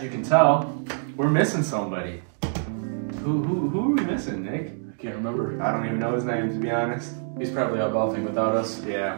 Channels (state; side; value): silent; left; digital silence